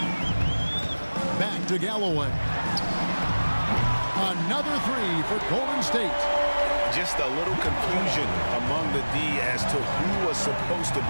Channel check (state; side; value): inverted; both; correlation -1.00